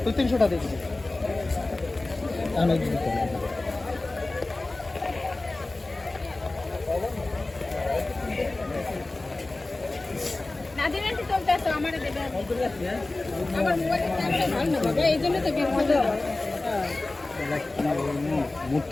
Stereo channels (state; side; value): quieter; right; 3.0 dB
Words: তুই 300টা দিবি আমি দিতে নাদিনান্টি চলতেছে আমারে দেবে আমার মোবাইলে ক্যামেরা ভালো না বাবা এইজন্য তো বের করে দাও